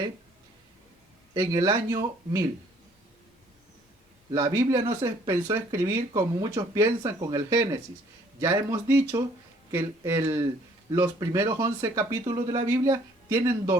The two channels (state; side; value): normal; both; correlation 0.60